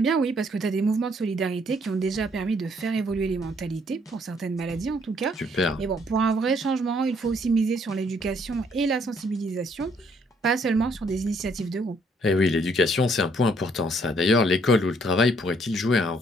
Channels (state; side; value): normal; both; correlation 0.66